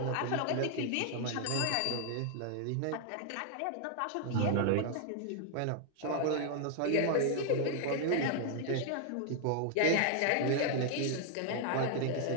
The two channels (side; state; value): both; different; correlation 0.00